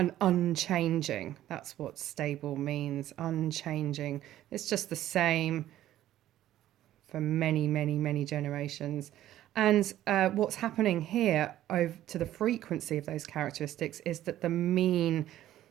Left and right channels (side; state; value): left; quieter; 13.2 dB